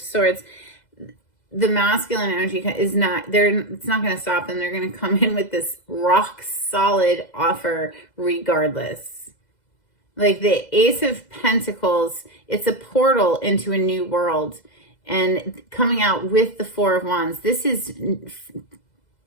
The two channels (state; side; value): late; right; 2.0 ms